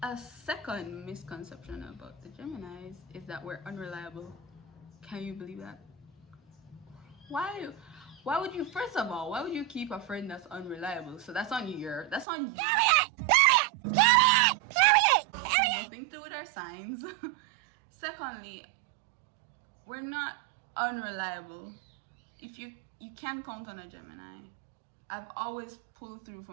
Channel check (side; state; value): left; drops out; at 12.2 s